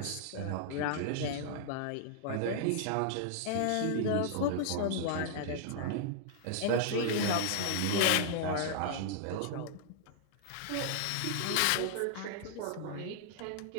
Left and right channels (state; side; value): different; both; correlation -0.01